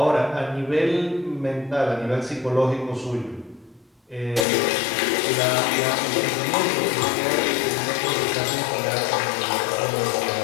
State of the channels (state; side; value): drops out; right; at 4.5 s